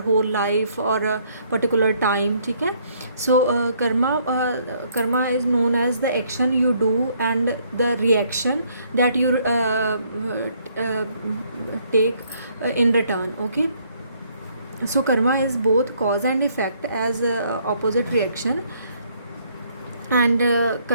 whole life or a particular time. ठीक है? So, karma is known as the action you do and the reaction that you take in return. Okay. So karma is both cause and effect as opposite reaction, and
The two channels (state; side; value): inverted; both; correlation -0.66